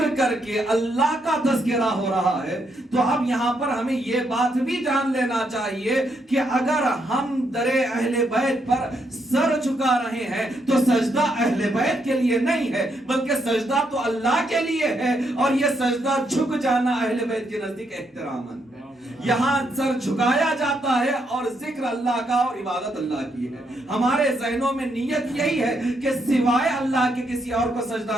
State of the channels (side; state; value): both; normal; correlation 0.77